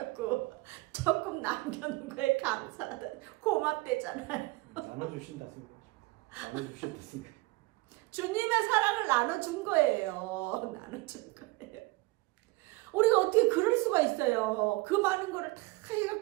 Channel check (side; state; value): left; quieter; 21.8 dB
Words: 조금 남겨놓은 거에 감사하다. 고맙대잖아요. 나눠주신다 생각. 나눠주신다 생각. 주님의 사랑을 나눠준 거예요. 나눠준 거예요. 우리가 어떻게 그럴 수가 있어요. 그 많은 거를 다